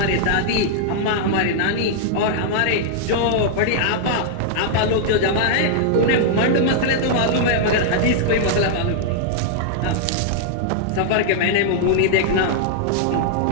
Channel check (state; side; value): different; both; correlation -0.01